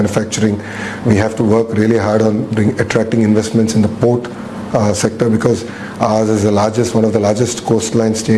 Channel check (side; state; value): both; identical; correlation 1.00